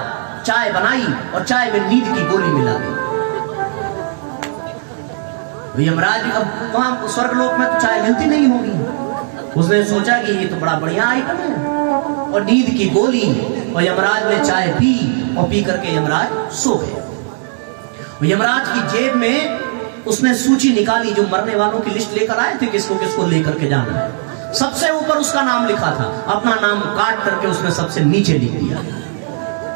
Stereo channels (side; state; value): left; silent; digital silence